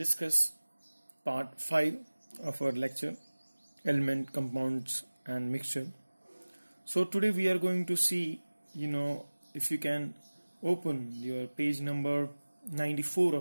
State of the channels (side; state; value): both; inverted; correlation -1.00